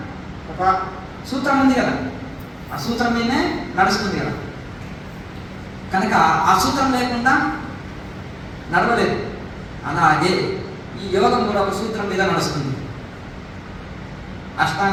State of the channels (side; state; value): both; identical; correlation 1.00